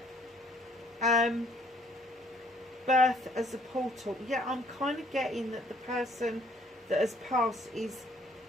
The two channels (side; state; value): both; normal; correlation 0.62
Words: Birth as a portal. Yeah, I'm kind of getting that the person that has passed is